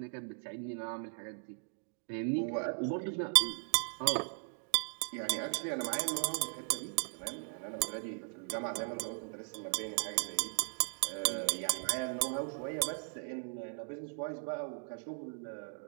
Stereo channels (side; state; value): left; silent; 53 dB below the other